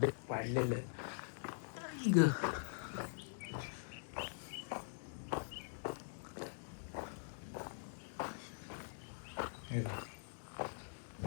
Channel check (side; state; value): right; silent; digital silence